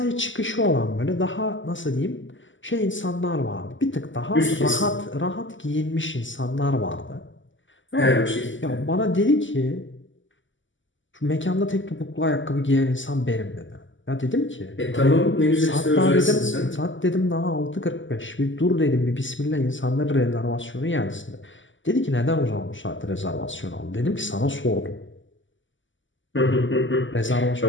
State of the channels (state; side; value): late; right; 0.55 ms